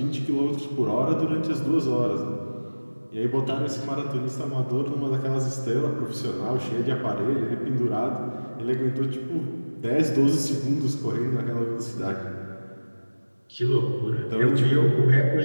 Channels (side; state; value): both; inverted; correlation -1.00